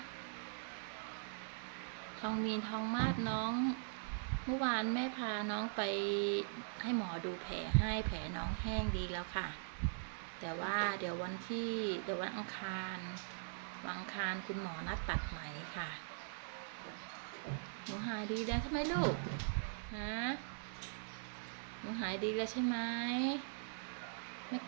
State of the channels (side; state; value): left; silent; digital silence